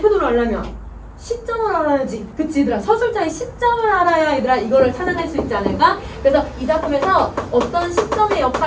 태도를 알려면 시점을 알아야지. 그치 얘들아? 서술자의 시점을 알아야 얘들아 이거를 찾아낼 수 있지 않을까? 그래서 이 작품에서 어떤 시점의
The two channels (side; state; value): both; identical; correlation 1.00